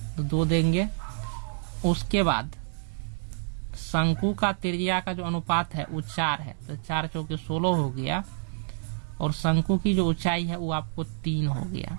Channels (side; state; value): left; silent; digital silence